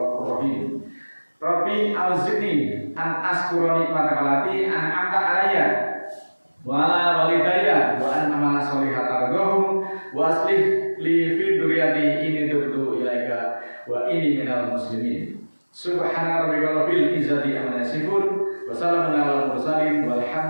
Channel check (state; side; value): inverted; both; correlation -1.00